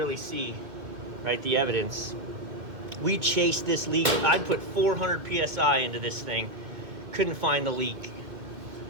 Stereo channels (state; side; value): late; left; 1.9 ms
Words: see, right, the evidence. We chased this leak. I put 400 psi into this thing, couldn't find the leak,